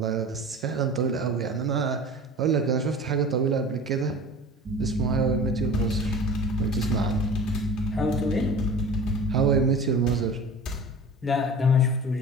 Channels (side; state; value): both; normal; correlation 0.37